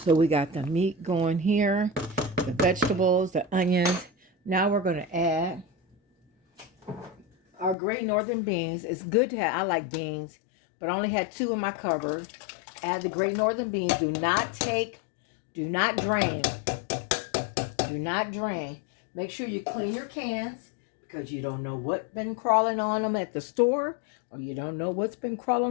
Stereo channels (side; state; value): right; drops out; at 7.8 s